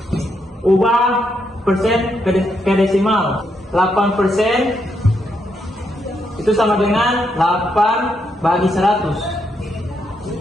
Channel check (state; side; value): normal; both; correlation 0.79